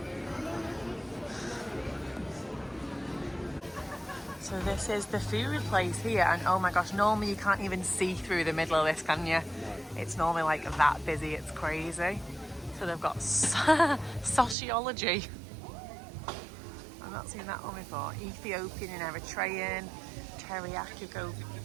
So this is the food place here, and oh my gosh, normally you can't even see through the middle of this, can you? It's normally like that busy, it's crazy. So they've got sociology. I've not seen that one before. Ethiopian and Eritrean, teriyaki goat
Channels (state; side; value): drops out; left; at 14.6 s